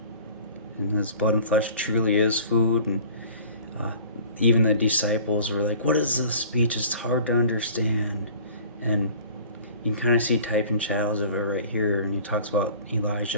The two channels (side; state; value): both; inverted; correlation -0.46